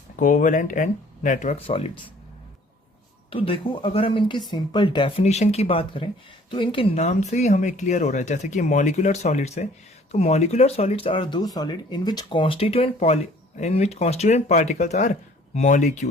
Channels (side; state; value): both; normal; correlation 0.55